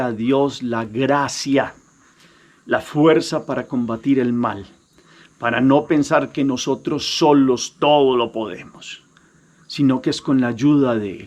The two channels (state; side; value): identical; both; correlation 1.00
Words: Dios la gracia, la fuerza para combatir el mal, para no pensar que nosotros solos todo lo podemos, sino que es con la ayuda de